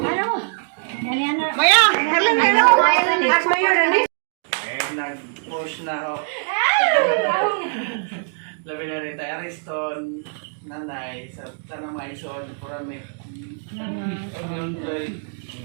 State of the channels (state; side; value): silent; left; digital silence